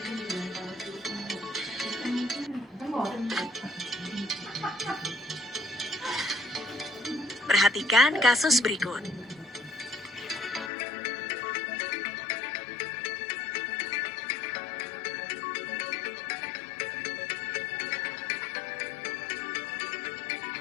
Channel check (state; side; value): drops out; right; at 10.7 s